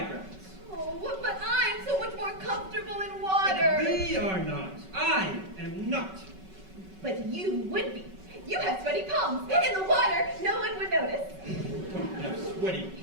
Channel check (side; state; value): left; late; 5.3 ms